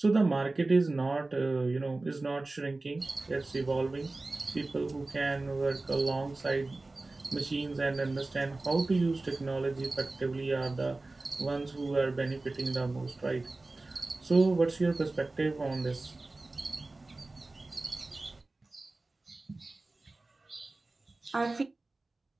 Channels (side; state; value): left; quieter; 3.2 dB